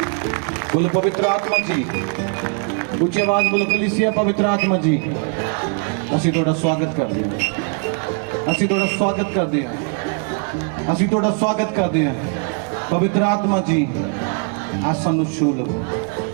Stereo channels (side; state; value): left; quieter; 39.5 dB